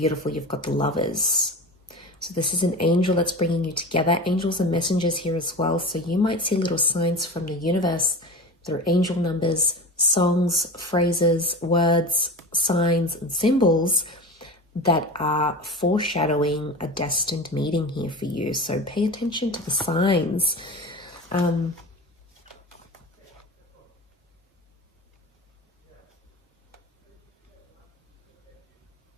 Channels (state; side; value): normal; both; correlation 0.31